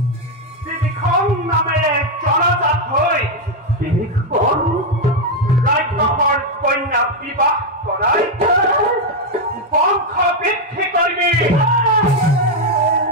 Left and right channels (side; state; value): both; normal; correlation 0.03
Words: ত্ৰিবিক্ৰম নামেৰে জনজাত হৈ ৰাক্ষসৰ কন্যা বিবাহ কৰাই বংশ বৃদ্ধি কৰিবি